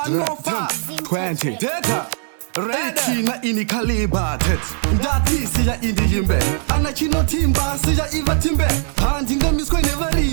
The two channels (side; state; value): left; silent; digital silence